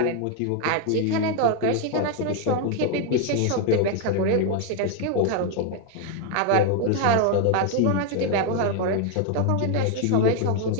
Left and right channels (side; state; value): both; different; correlation 0.01